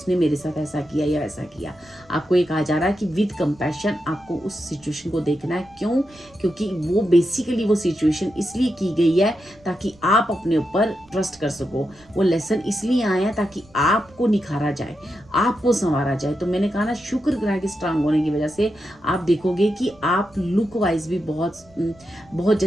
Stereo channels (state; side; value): noise; right; rumble, 27 dB below the sound